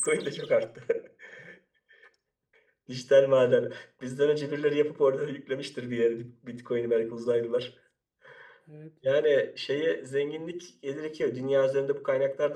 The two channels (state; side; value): identical; both; correlation 1.00